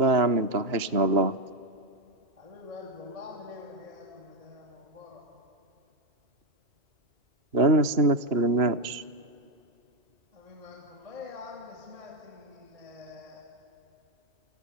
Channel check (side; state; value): left; late; 2.9 ms